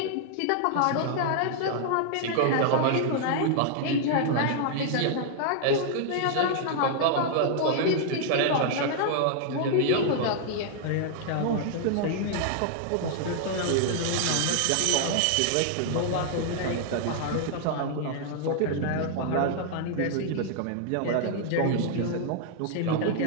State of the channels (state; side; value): different; both; correlation -0.01